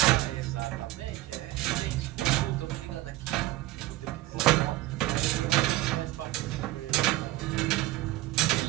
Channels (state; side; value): quieter; left; 17.5 dB